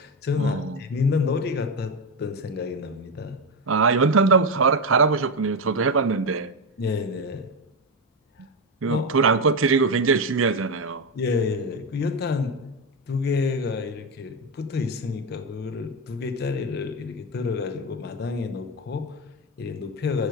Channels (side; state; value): both; normal; correlation 0.11